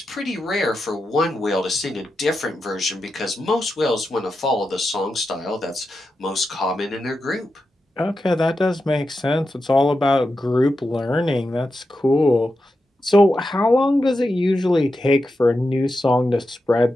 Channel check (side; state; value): both; normal; correlation 0.89